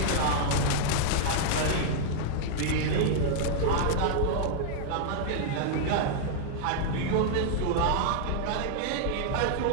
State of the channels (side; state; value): both; different; correlation -0.01